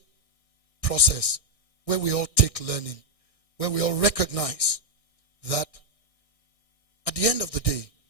process where we all take learning, where we all recognize that at the end of the day,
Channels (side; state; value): right; late; 1.6 ms